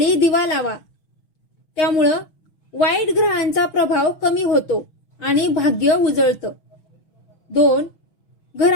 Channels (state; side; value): late; right; 6.2 ms